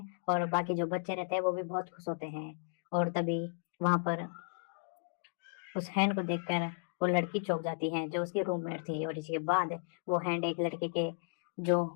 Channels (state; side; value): silent; right; digital silence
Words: और बाकी जो बच्चे रहते हैं वो भी बहुत खुश होते हैं। और तभी वहां पर उस हैंड को देखकर वो लड़की चौंक जाती है जो उसकी रूममेट थी। और इसके बाद वो हैंड एक लड़के के जो